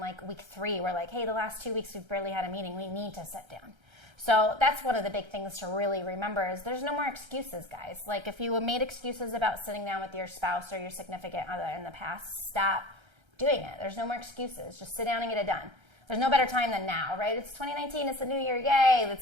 week 3, we're like, hey, the last 2 weeks we've barely had a meeting. We need to sit down. So that's one of the big things to really remember is there's no more excuses, guys. Like if you made excuses about sitting down with your spouse or your significant other in the past, stop doing it. There's no more excuses. Just sit down and get it done. There's no better time than now, right? It's 2019. It's the new year. Yay.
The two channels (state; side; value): late; left; 1.3 ms